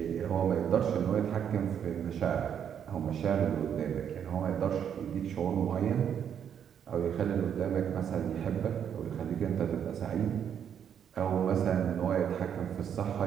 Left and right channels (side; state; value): left; quieter; 8.6 dB